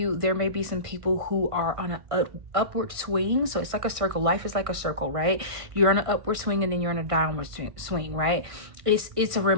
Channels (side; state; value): left; late; 1.5 ms